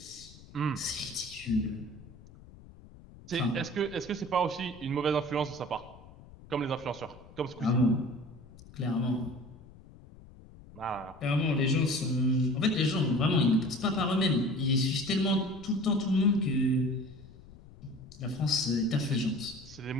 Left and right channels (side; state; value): left; noise; rumble, 20 dB below the sound